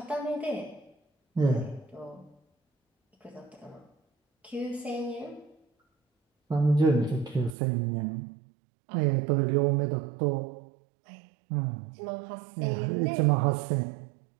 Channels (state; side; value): drops out; left; at 7.6 s